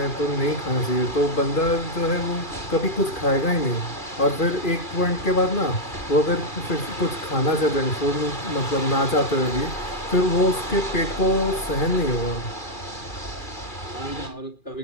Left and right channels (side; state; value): right; late; 2.4 ms